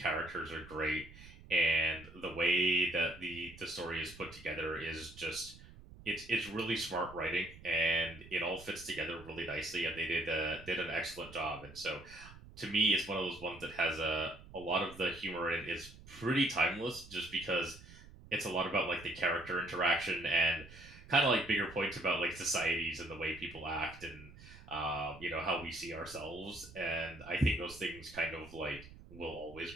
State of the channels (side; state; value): right; noise; rumble, 18 dB below the sound